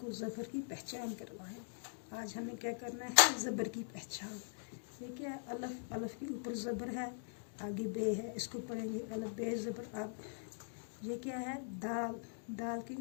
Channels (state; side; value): silent; right; digital silence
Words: ज़बर की पहचान करवाएं। आज हमें क्या करना है, ज़बर की पहचान। ये क्या है, अलफ, अलफ के ऊपर ज़बर है, आगे बे है, इसको पढ़ेंगे अलफ बे ज़बर अब। ये क्या है, दाल, दाल के